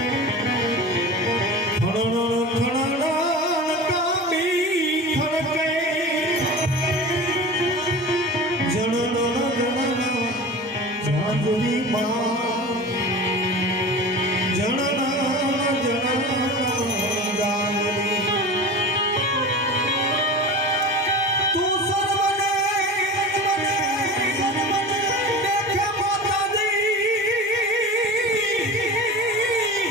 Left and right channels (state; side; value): normal; both; correlation 0.33